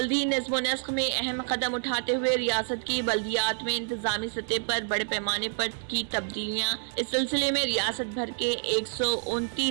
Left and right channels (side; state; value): left; silent; 59 dB below the other